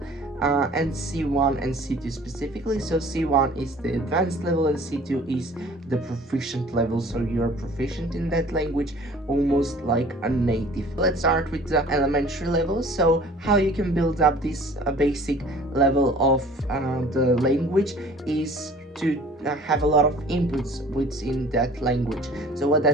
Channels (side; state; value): both; normal; correlation 0.49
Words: And C1 and C2 specifically. So C1 is the advanced level and C2 is the proficient level. So you're proficient in that language almost like a native. Let's start with the elementary level. So how you can build up this basic level of the language is to have a lot of inputs within that language. So what